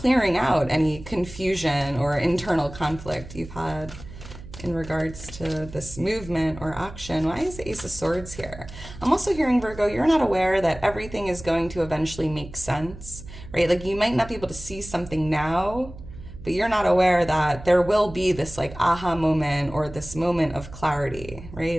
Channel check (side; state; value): right; noise; hum, 15 dB below the sound